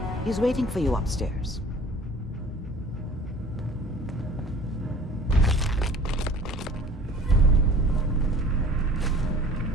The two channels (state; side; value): normal; both; correlation 0.48